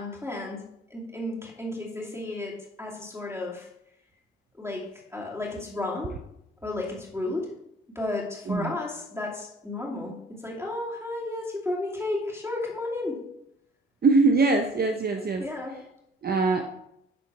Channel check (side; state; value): both; normal; correlation 0.53